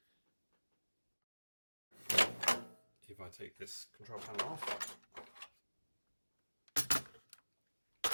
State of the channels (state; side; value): inverted; both; correlation -1.00